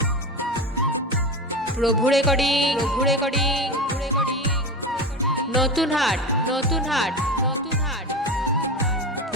প্রভু রেকর্ডিং, প্রভু রেকর্ডিং, প্রভু রেকর্ডিং। নতুন হাট, নতুন হাট, নতুন হাট।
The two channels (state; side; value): normal; both; correlation 0.24